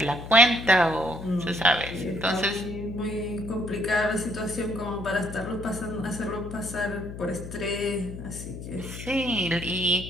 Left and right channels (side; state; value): left; noise; hum, 10 dB below the sound